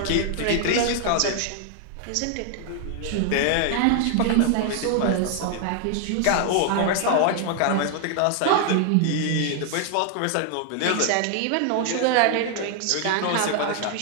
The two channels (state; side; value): different; both; correlation 0.00